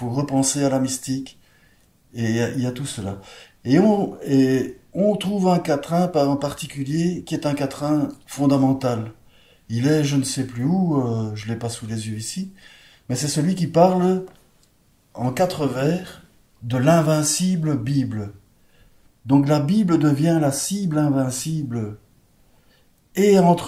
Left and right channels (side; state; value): both; identical; correlation 1.00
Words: repenser à la mystique, et il y a tout cela. Et on trouve un quatrain en particulier qui est un quatrain fondamental. Il est, je ne sais plus où, je ne l'ai pas sous les yeux ici, mais c'est celui qui parle en 4 vers de l'invincible Bible. Donc la Bible devient la cible invincible. Et